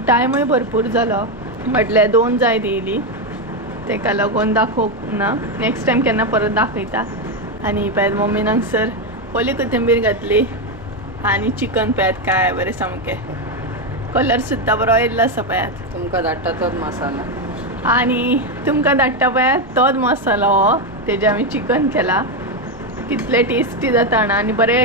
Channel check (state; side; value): normal; both; correlation 0.07